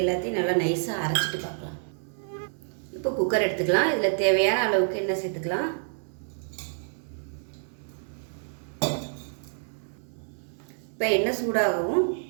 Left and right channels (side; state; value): left; silent; digital silence